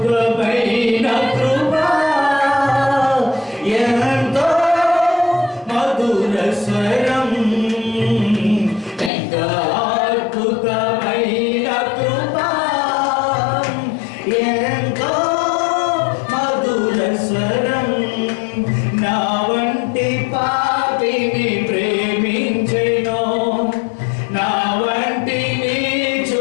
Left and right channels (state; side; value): drops out; right; at 9.1 s